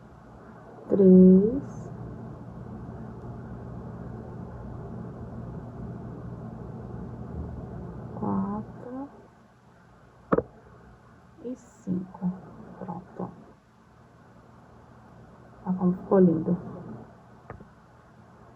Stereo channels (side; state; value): both; identical; correlation 1.00